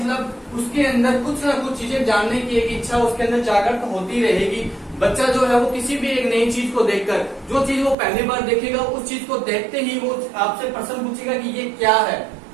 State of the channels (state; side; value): drops out; left; at 8.0 s